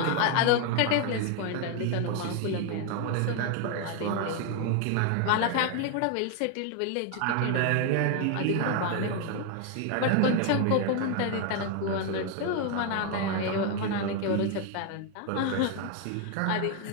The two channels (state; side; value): different; both; correlation 0.01